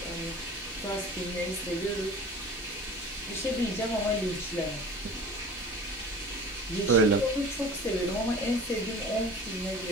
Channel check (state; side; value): normal; both; correlation 0.40